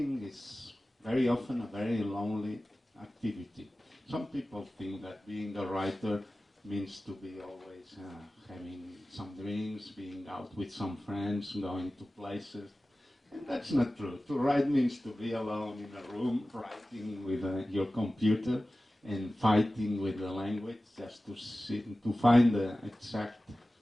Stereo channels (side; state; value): both; normal; correlation 0.96